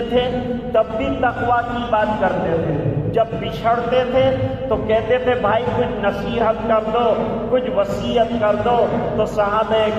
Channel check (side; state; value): both; identical; correlation 1.00